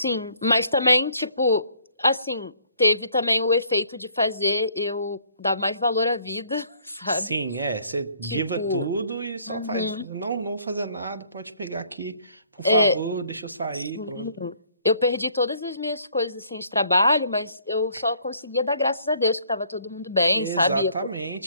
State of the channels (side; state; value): both; inverted; correlation -0.61